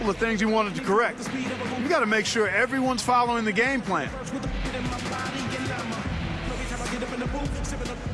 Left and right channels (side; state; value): both; identical; correlation 1.00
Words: of things he wanted to correct. You got to make sure everyone's following the game plan.